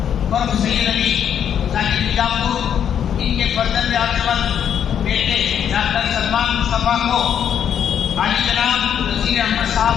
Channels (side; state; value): right; quieter; 8.9 dB